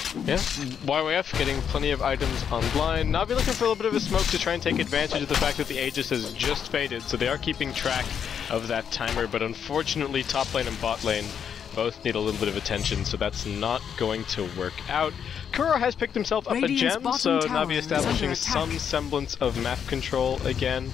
Yeah, YYF getting plenty of items online. Na'Vi looking for a little bit of a smoke to try and take advantage of the fact that the Aegis has just faded, so they are keeping track of that timer, but unfortunately top lane and bot lane both need a little bit of attention, so that's not going to work out. Kuro has picked himself up a gem, so Na'Vi establishing some semblance of map control again.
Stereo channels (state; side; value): quieter; right; 7.9 dB